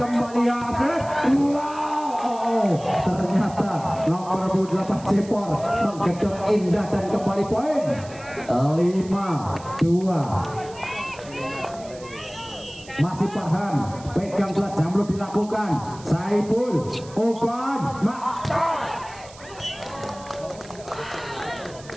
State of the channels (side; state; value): right; noise; hiss, 20 dB below the sound